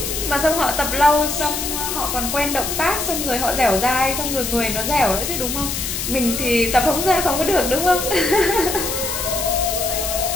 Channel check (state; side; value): noise; left; hiss, 3 dB below the sound